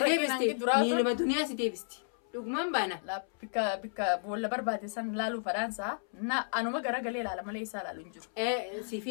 deebisti miiluma duniyaa si deebisti dhugumaan baana. Bikka boolla barbaade san laaluu fadhaansaa anuma garagalee ilaala malee isaa ilaalu hin jiru.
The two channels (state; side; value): silent; right; 56 dB below the other